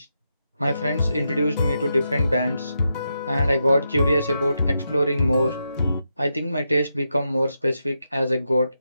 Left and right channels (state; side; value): inverted; both; correlation -0.85